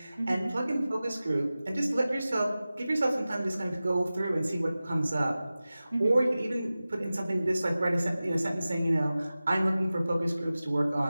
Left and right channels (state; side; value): inverted; both; correlation -0.96